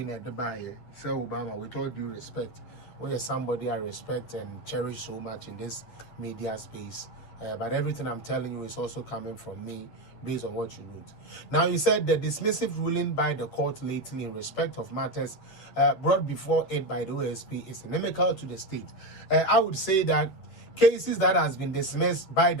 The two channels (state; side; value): late; right; 9.8 ms